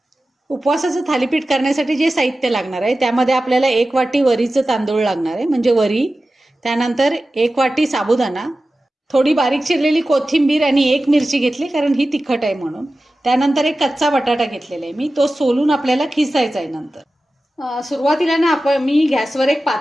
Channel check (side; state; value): both; normal; correlation 0.95